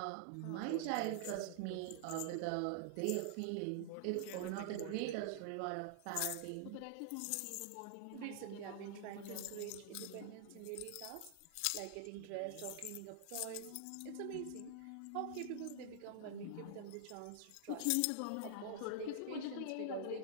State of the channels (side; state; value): both; different; correlation -0.01